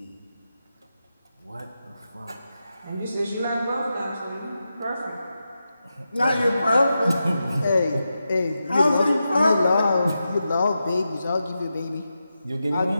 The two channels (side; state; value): both; inverted; correlation -0.89